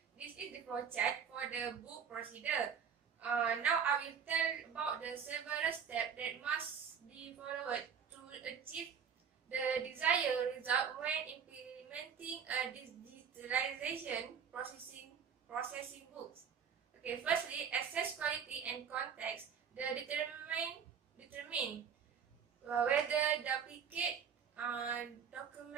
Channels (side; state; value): left; quieter; 7.1 dB